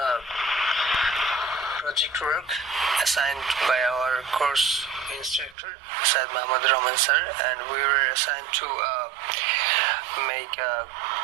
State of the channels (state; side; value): drops out; left; at 5.6 s